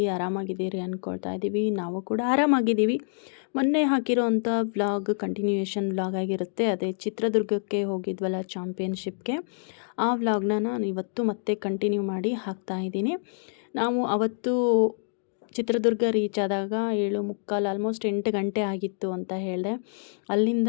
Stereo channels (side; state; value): right; silent; digital silence